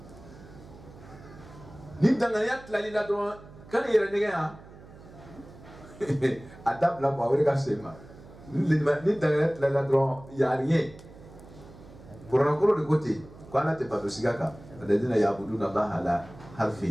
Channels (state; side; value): noise; right; hum, 19 dB below the sound